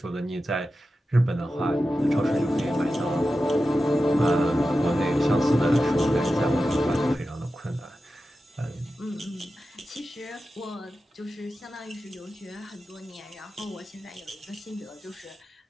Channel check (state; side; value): normal; both; correlation 0.92